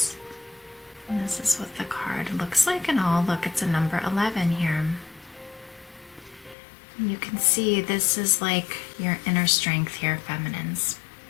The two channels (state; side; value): drops out; right; at 6.6 s